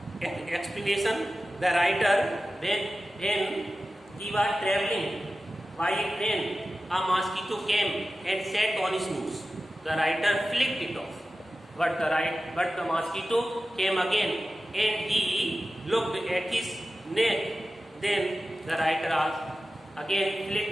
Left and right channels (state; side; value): normal; both; correlation 0.94